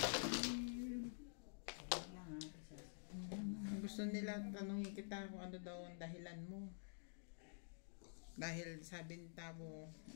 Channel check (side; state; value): right; silent; digital silence